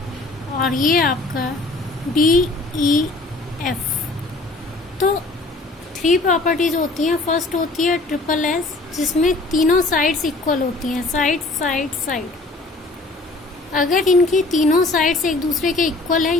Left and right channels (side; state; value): right; quieter; 3.1 dB